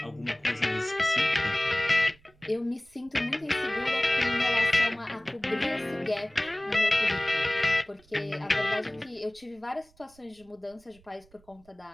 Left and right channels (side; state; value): right; noise; rumble, 29 dB below the sound